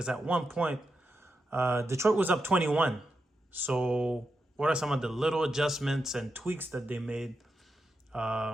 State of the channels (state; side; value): normal; both; correlation 0.87